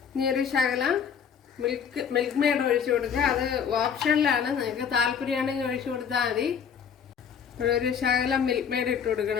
ഇനി ഒരു ശകലം മിൽക്ക് മെയ്ഡ് ഒഴിച്ചു കൊടുക്കുക. അത് ഓപ്ഷനിലാണ്, നിങ്ങൾക്ക് താല്പര്യമാണെങ്കിൽ ഒഴിച്ചു കൊടുത്താൽ മതി. ഒരു ശകലം മിൽക്ക് മെയ്ഡ് ഇട്ട്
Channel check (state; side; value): quieter; right; 7.4 dB